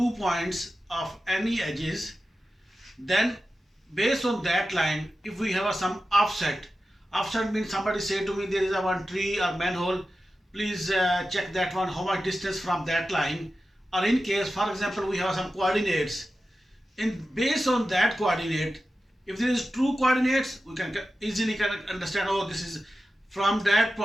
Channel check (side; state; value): both; normal; correlation 0.93